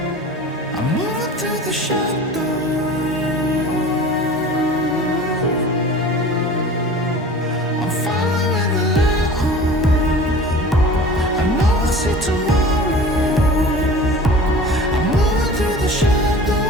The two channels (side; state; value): both; normal; correlation 0.40